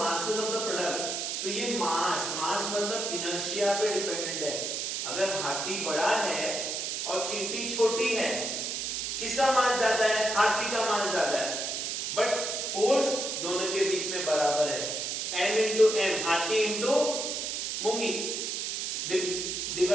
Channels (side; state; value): right; noise; hiss, 2 dB below the sound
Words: of the product. तो ये मास मतलब इनर्शिया पे डिपेंडेंट है. अगर हाथी बड़ा है और चींटी छोटी है, किसका मास ज्यादा है? हाथी का मास ज्यादा है. बट फोर्स दोनों के बीच में बराबर है. m इंटू m, हाथी इंटू मूंगी,